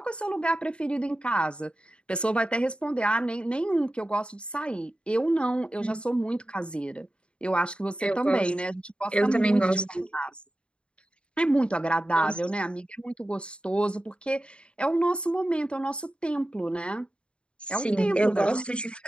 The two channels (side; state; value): right; late; 0.055 ms